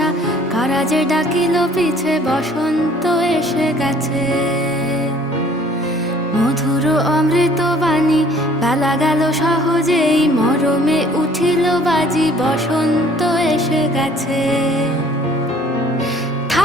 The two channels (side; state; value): both; normal; correlation 0.56